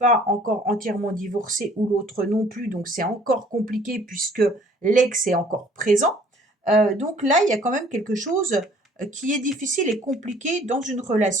encore entièrement divorcé ou l'autre non plus, donc c'est encore compliqué puisque l'ex est encore présent. Donc là, il y a quand même quelque chose qui est difficile et compliqué dans une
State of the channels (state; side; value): normal; both; correlation 0.56